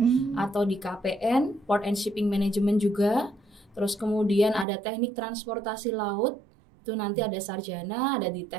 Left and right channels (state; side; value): drops out; left; at 4.7 s